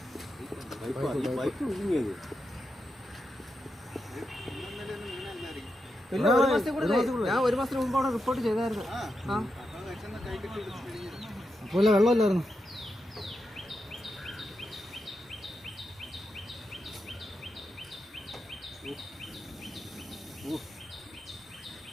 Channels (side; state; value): both; normal; correlation 0.87